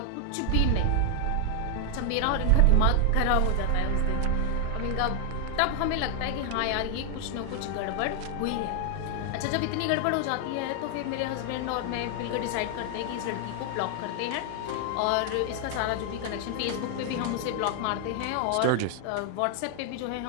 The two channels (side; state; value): both; different; correlation 0.00